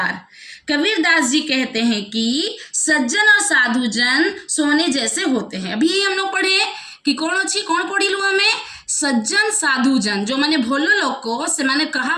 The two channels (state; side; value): identical; both; correlation 1.00